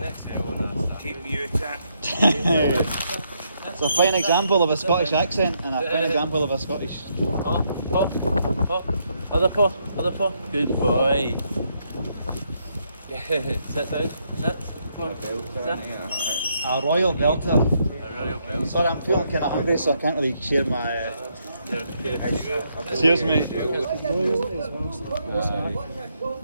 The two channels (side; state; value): both; inverted; correlation -0.76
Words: Keep you attack. It's a fine example of a Scottish accent and a fine example of a Scottish. Other paw. Good boy. Sit down. Sit. Come on. Sit. A royal belter. A royal bell. Sorry, I'm feeling kind of hungry, so I can't really share my. Cheers, mate.